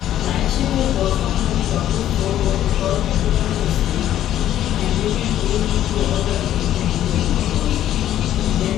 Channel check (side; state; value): right; quieter; 11.9 dB